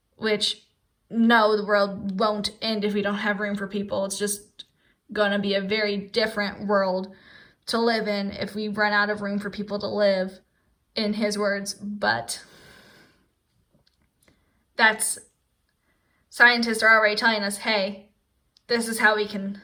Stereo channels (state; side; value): identical; both; correlation 1.00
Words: which no, the world won't end if we don't have room for people. It's just going to be a very different world to live in if we run out of room for people to live, in his words. But scientists are already telling us, hey, this is how we can